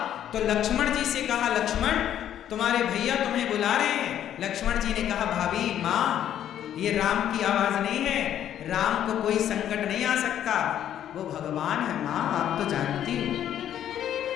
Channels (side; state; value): right; quieter; 10.6 dB